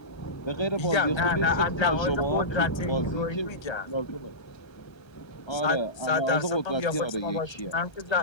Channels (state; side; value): late; right; 1.3 ms